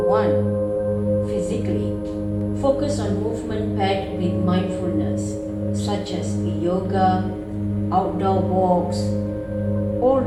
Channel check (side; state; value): both; identical; correlation 1.00